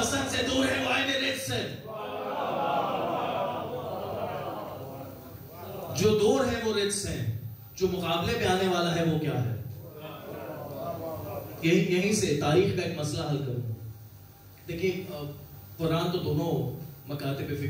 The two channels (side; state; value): both; identical; correlation 1.00